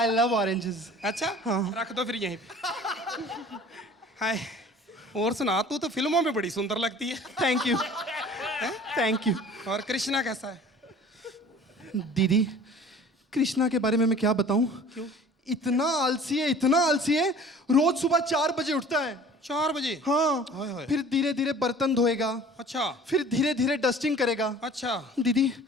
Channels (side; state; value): both; normal; correlation 0.47